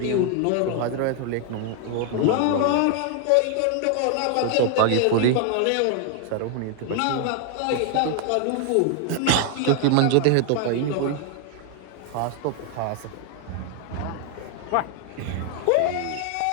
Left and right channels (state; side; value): different; both; correlation 0.00